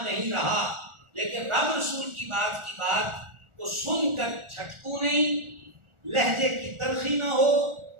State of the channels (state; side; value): late; left; 1.4 ms